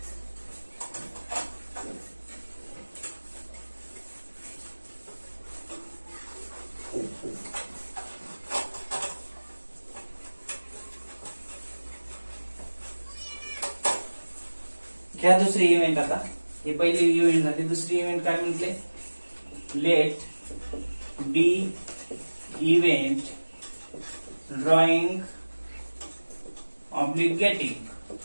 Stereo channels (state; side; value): inverted; both; correlation -1.00